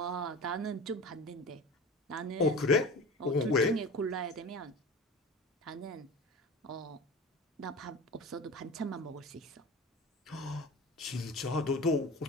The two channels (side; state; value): both; normal; correlation 0.34